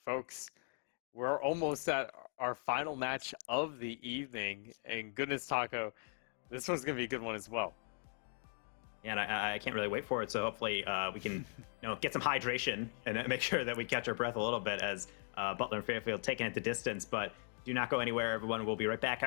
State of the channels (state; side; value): silent; right; 52 dB below the other